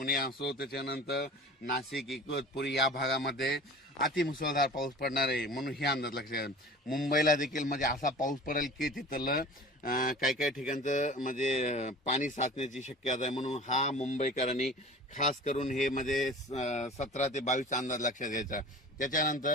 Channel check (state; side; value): normal; both; correlation 0.40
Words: असो, त्याच्यानंतर नाशिक, इगतपुरी या भागामध्ये अतिमुसळधार पाऊस पडणार आहे. म्हणून हे अंदाज लक्षात घ्या. मुंबईला देखील म्हणजे असा पाऊस पडेल की तिथलं काही ठिकाणचं म्हणजे पाणी साचण्याची शक्यता आहे. म्हणून हा मुंबईकरांनी खास करून हे म्हणजे 17 ते 22चा अंदाज लक्षात घ्यायचा.